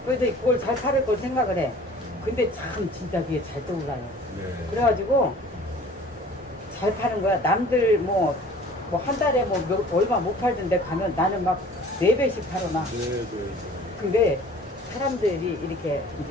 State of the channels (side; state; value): both; normal; correlation 0.48